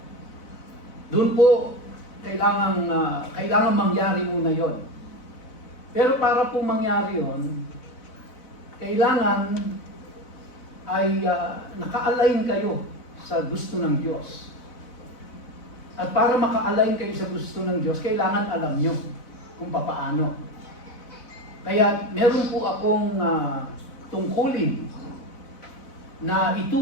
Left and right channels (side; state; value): right; late; 4.0 ms